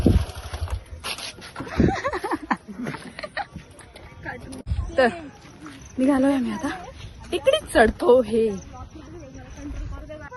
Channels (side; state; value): both; identical; correlation 1.00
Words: तर निघालोय आम्ही आता, टेकडीच चढतो. हे